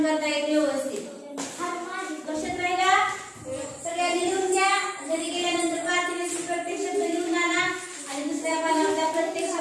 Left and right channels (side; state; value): both; identical; correlation 1.00